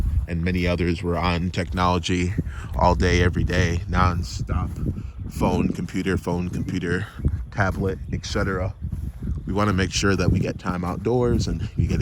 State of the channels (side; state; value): both; identical; correlation 1.00